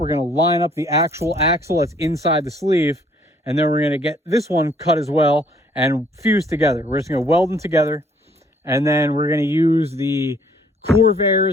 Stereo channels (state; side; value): normal; both; correlation 0.62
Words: going to line up the actual axle that's inside the sleeve. And then we're going to get this one cut as well and fuse together. We're just going to weld them together. And then we're going to use the